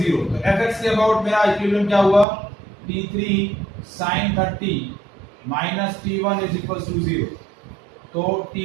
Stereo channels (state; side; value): drops out; left; at 2.2 s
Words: तो fx के अबाउट मेरा इक्विलिब्रियम क्या हुआ T3 sin 30 minus T1 is equal to 0, तो